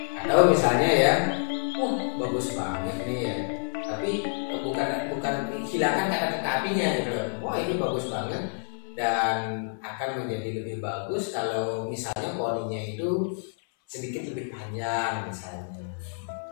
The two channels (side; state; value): right; silent; 59 dB below the other